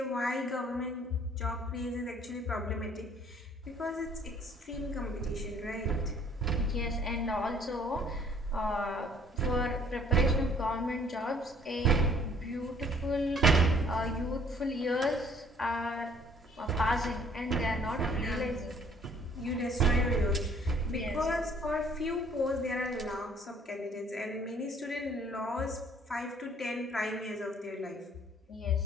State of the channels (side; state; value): both; normal; correlation 0.59